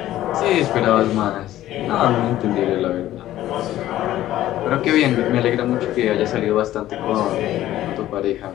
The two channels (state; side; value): quieter; right; 13.9 dB